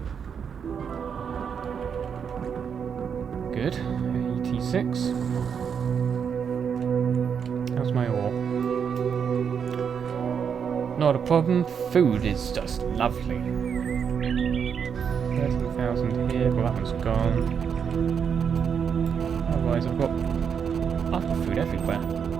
Good. 86. How's my ore? Not a problem. Food is just lovely. 13,000 here. Well, that one's gone. Otherwise, I've got lots of food everywhere.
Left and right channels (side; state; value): left; quieter; 7.1 dB